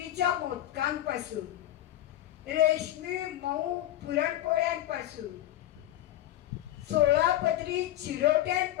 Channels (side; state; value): right; quieter; 13.3 dB